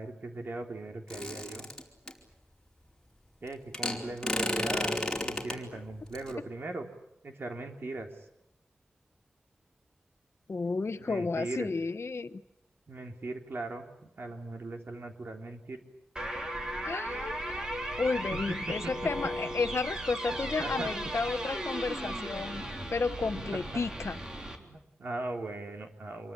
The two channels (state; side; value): normal; both; correlation 0.80